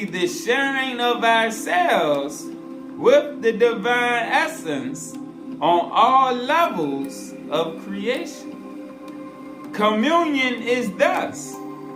the sharing of ourselves with the divine essence on all levels of creation. Communion is thus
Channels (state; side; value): identical; both; correlation 1.00